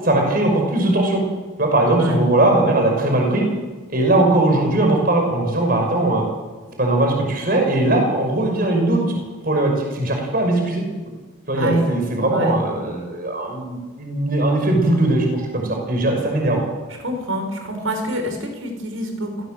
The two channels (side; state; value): both; normal; correlation 0.35